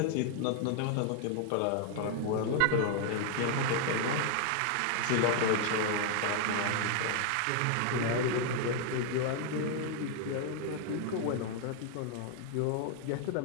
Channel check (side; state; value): both; different; correlation 0.00